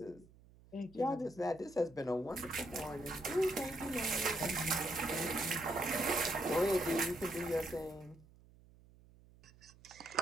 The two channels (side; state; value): right; noise; hum, 25 dB below the sound